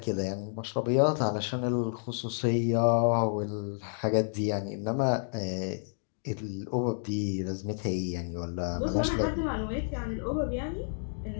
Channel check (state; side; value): silent; right; digital silence